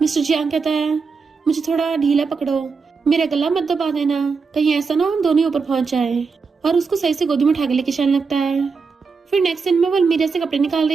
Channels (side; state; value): left; quieter; 5.0 dB